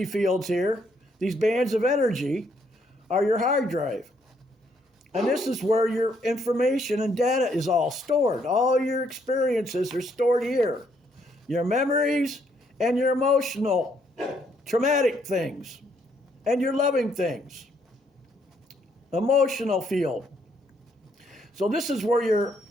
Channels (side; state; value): both; normal; correlation 0.71